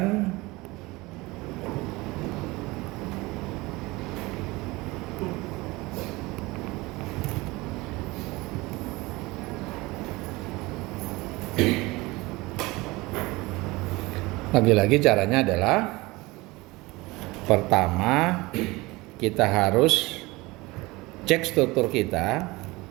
lagi-lagi caranya adalah pertama kita harus cek struktur kita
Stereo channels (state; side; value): quieter; left; 22.0 dB